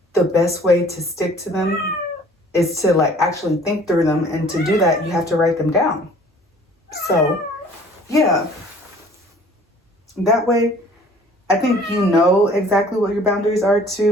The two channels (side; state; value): both; normal; correlation 0.52